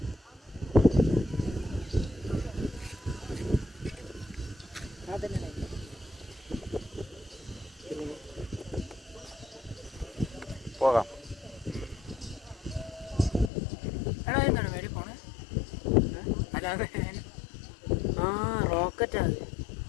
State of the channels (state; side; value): drops out; right; at 13.5 s